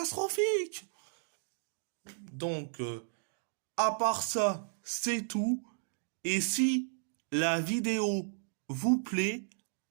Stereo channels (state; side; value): silent; left; digital silence